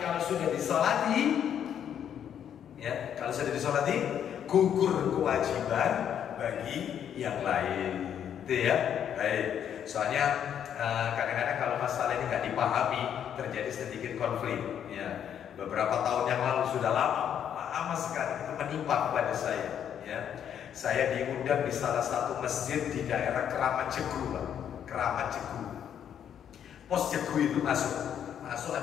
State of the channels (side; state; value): right; quieter; 9.1 dB